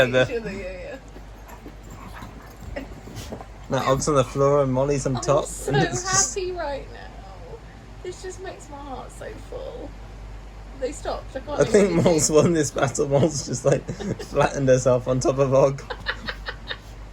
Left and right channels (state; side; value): identical; both; correlation 1.00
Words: other. yeah. Now Og's on the floor and Molly's on top. I'm so and it's just- happy right now. This just makes my heart so full. They stopped. I can't I do think anything. Mol's won this battle. Mol's just like flattened herself on top of Og.